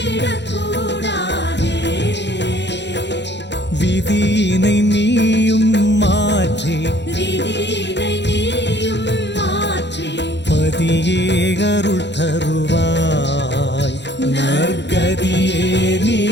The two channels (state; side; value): late; right; 0.51 ms